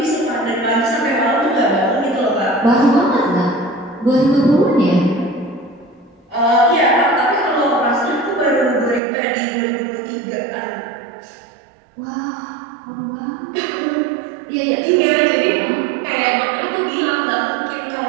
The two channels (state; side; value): drops out; left; at 9.0 s